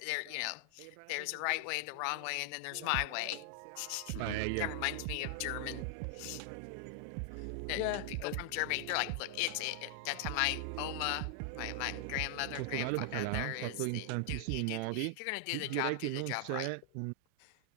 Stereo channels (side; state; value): both; different; correlation 0.00